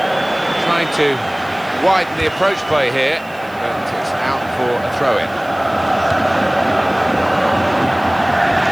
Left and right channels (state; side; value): noise; right; hiss, 26 dB below the sound